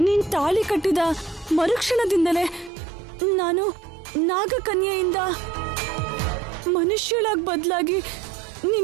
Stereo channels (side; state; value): left; drops out; at 2.7 s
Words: ನೀನ್ ತಾಳಿ ಕಟ್ಟಿದ ಮರುಕ್ಷಣದಿಂದಲೇ ನಾನು ನಾಗಕನ್ಯೆಯಿಂದ ಮನುಷ್ಯಳಾಗಿ ಬದಲಾಗಿ